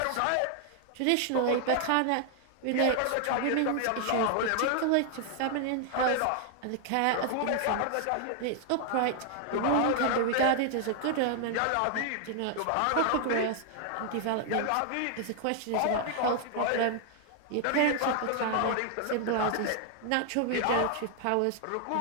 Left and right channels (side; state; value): both; different; correlation 0.00